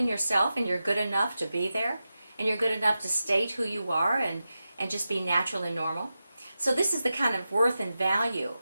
yourself and you're good enough to be there and you're good enough to state who you are and just be natural and normal? So this is the kind of worth and value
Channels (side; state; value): both; inverted; correlation -0.91